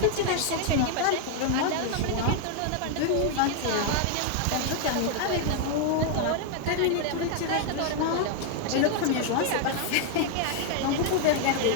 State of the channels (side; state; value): both; different; correlation 0.00